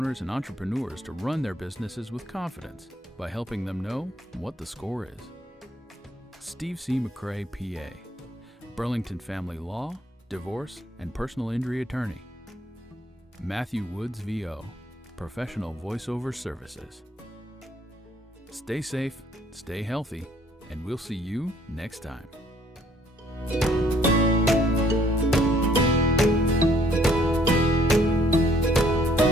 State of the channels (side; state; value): both; normal; correlation 0.62